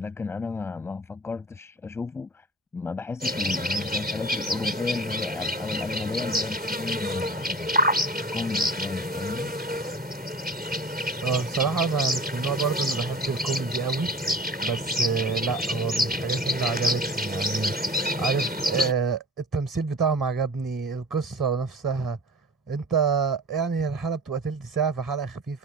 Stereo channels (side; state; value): both; normal; correlation 0.38